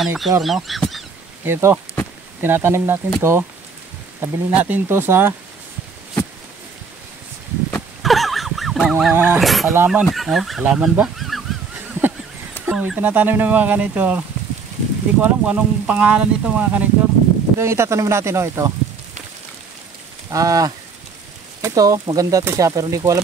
no? Ito, tinatanim natin to, tabili natin to sa mga halaman. Halaman ba? Itinatanim ng mga ka-nature. Hindi ko alam kung anong pangalan nito mga ka-nature. Ito yung itatanim natin, ito. Ito, maganda to siya pero hindi ko alam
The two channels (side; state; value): left; quieter; 5.2 dB